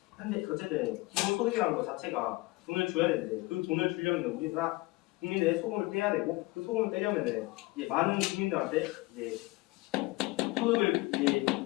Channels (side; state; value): right; quieter; 21.5 dB